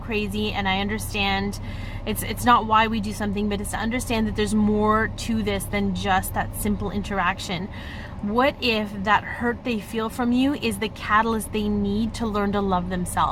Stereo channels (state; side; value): identical; both; correlation 1.00